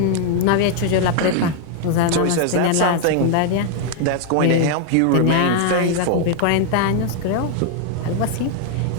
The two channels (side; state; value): both; different; correlation 0.00